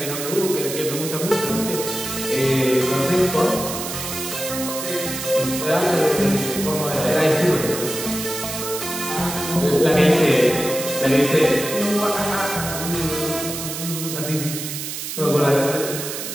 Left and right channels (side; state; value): right; noise; hiss, 6 dB below the sound